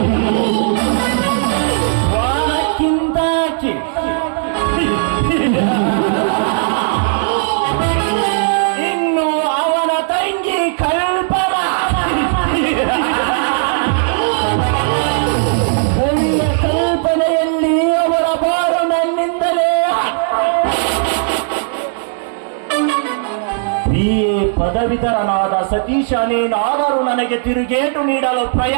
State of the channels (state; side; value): silent; left; digital silence